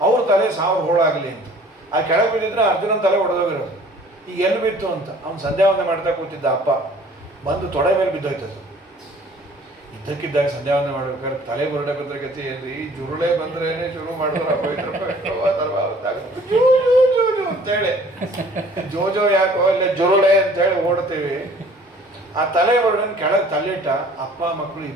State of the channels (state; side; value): normal; both; correlation 0.52